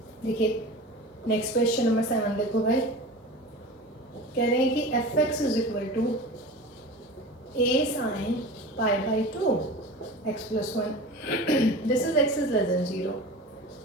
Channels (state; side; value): normal; both; correlation 0.34